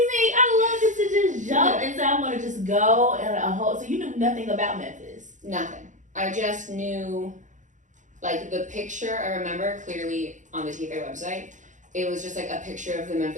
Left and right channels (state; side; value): late; left; 0.36 ms